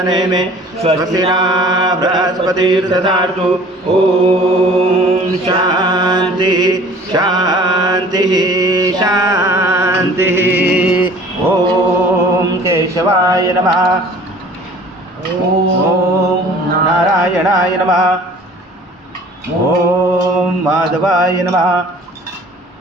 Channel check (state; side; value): normal; both; correlation 0.48